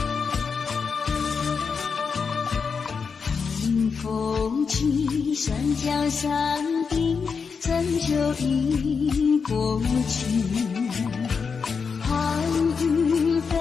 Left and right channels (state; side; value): quieter; right; 5.6 dB